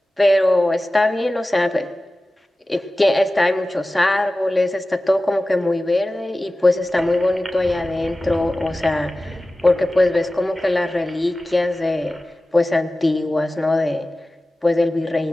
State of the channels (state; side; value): normal; both; correlation 0.96